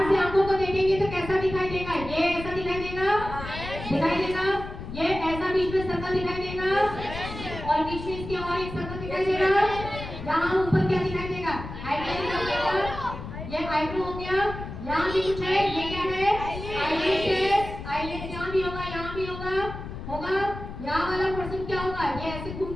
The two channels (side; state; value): left; noise; rumble, 9 dB below the sound